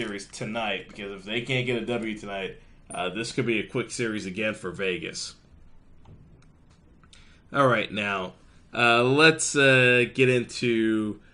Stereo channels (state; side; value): identical; both; correlation 1.00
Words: tonight, because if they can't get a W tonight, this could be a quick series again for Vegas. All right, now let's get into